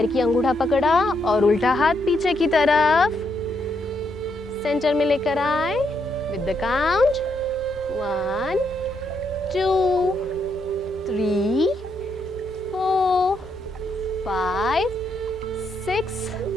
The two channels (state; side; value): normal; both; correlation 0.77